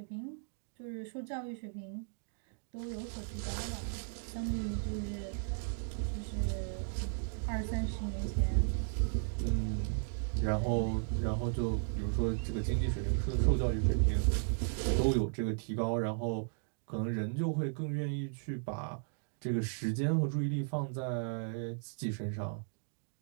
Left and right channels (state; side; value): silent; left; digital silence